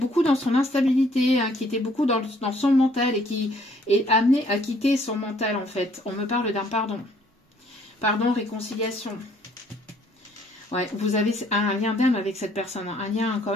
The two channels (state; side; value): normal; both; correlation 0.62